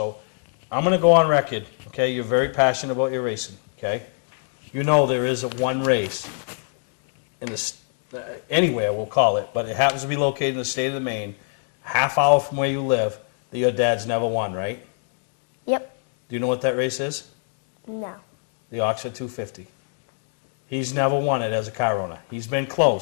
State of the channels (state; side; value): silent; right; 62 dB below the other